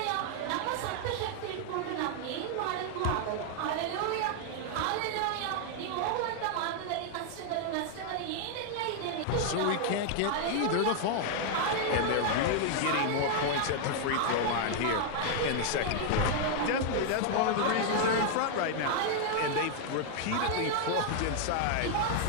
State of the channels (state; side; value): different; both; correlation 0.00